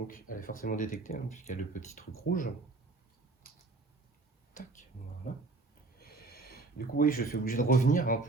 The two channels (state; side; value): quieter; left; 3.5 dB